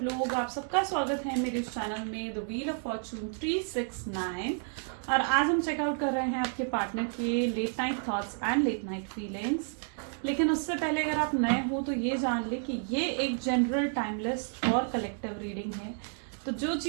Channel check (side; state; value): left; silent; 57 dB below the other